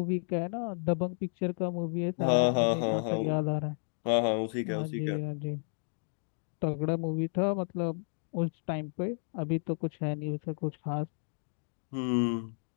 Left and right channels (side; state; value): right; silent; digital silence